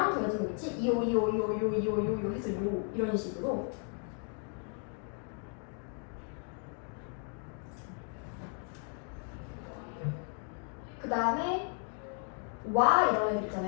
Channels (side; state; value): right; quieter; 39.3 dB